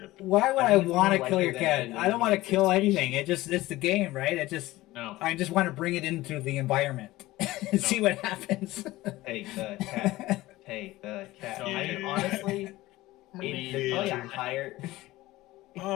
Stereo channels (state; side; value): quieter; right; 17.8 dB